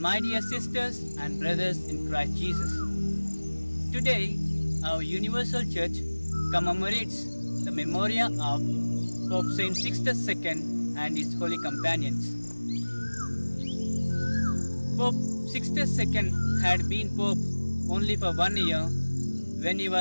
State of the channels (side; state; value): both; inverted; correlation -1.00